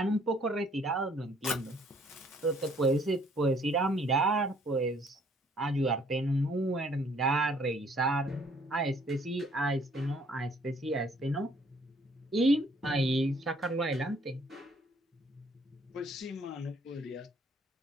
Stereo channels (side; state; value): both; normal; correlation 0.62